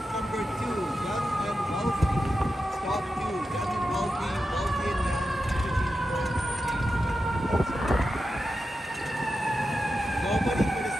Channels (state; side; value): normal; both; correlation 0.90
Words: number 2, Young and Wealthy? Stop 2, Young and Wealthy, Wealthy and Young, nobody for the